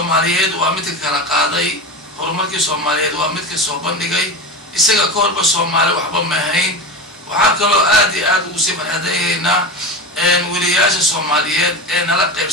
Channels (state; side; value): normal; both; correlation 0.24